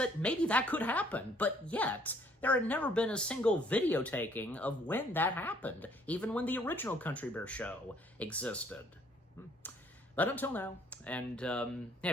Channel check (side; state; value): both; normal; correlation 0.62